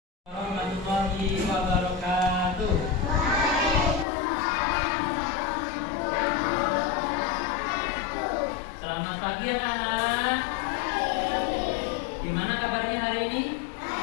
Warahmatullahi wabarakatuh. Selamat pagi anak-anak. Gimana kabarnya hari ini?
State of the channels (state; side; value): drops out; right; at 4.0 s